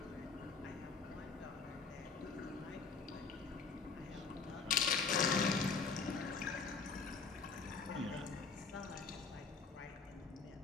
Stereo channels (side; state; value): right; quieter; 5.0 dB